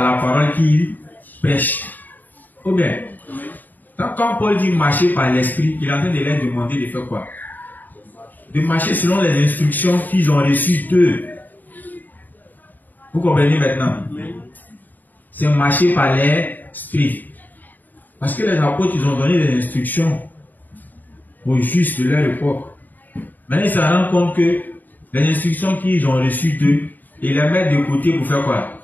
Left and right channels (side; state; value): right; late; 0.086 ms